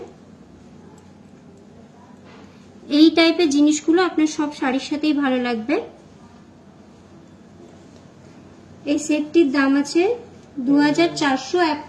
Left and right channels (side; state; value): both; identical; correlation 1.00